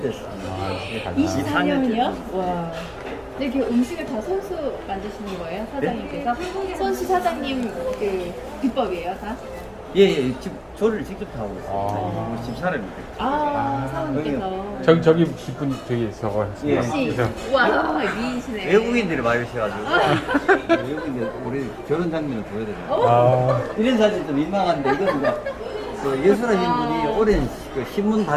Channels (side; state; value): both; identical; correlation 1.00